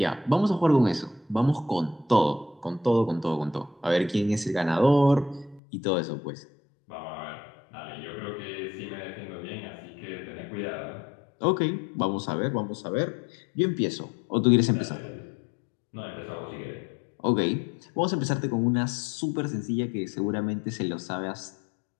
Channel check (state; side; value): drops out; right; at 5.6 s